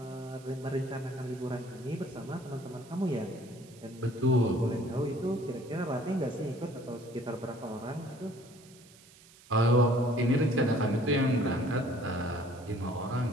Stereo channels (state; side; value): noise; right; hiss, 24 dB below the sound